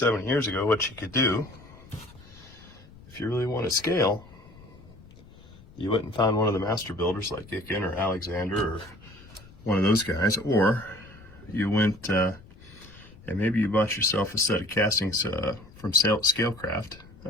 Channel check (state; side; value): noise; left; rumble, 22 dB below the sound